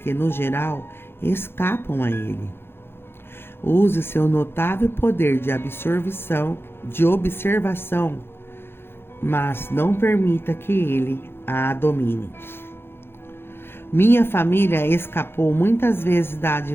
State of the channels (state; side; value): late; right; 0.11 ms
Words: no geral, escapam a ele. Use seu notável poder de observação, mas não permita que ele a domine. Minha família escapou muitas vezes da